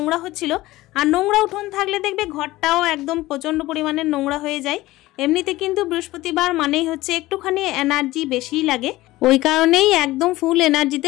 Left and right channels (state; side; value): quieter; right; 17.8 dB